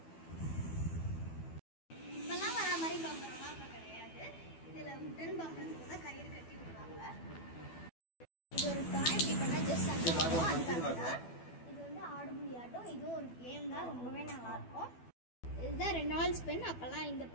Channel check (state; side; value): late; right; 12 ms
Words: இப்போல்லாம் வர மாதிரி பம்பரம்லாம் இப்போ கிடையாது. இதில் உடன் பம்பரத்துக்கு தான் கயிறு கட்டி விடுவாங்க. இது ஒரு டாய், இப்படி பண்ணால் ஜஸ்ட் அதுக்காக தான். இது வந்து ஆடுபுலி ஆட்டம், இதுவும் ஒரு கேம் தான், ரொம்பவே நல்லாயிருக்கும். இதுதான் ரெனால்ட்ஸ் பென், அப்போல்லாம் இந்த